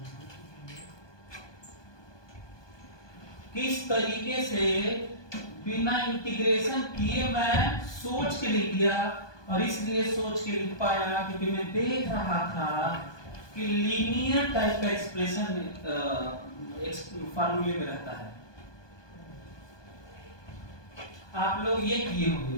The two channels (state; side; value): late; right; 1.2 ms